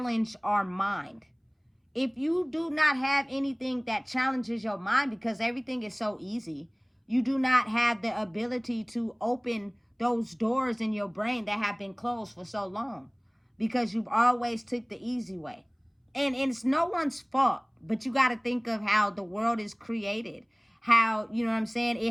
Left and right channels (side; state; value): both; identical; correlation 1.00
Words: our mind. If you do not have anything that challenges your mind, because everything is so easy, you do not have the ability to open those doors in your brain that have been closed for so long, because you've always took the easy way. And it's no one's fault, but you got to think of how the world is created, how, you know what I'm saying,